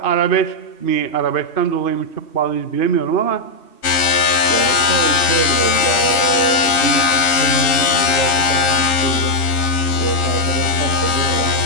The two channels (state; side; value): late; right; 3.1 ms